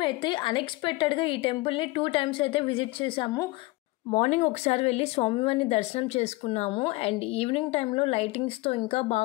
అన్ఎక్స్పెక్టెడ్గా ఈ టెంపుల్ని 2 times అయితే విజిట్ చేసాము. మార్నింగ్ ఒకసారి వెళ్ళి స్వామివారిని దర్శనం చేసుకున్నాము అండ్ ఈవినింగ్ టైంలో లైటింగ్స్తో ఇంకా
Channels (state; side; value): quieter; right; 21.8 dB